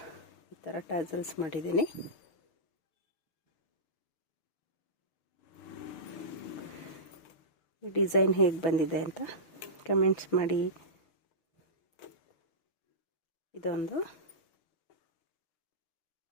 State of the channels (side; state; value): right; late; 6.4 ms